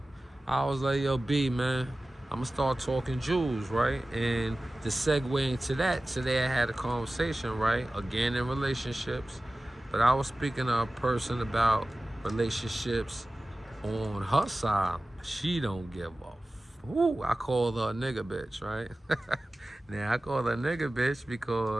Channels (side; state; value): both; normal; correlation 0.96